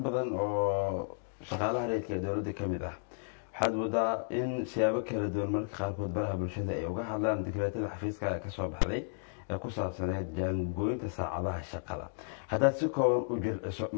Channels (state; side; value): silent; right; digital silence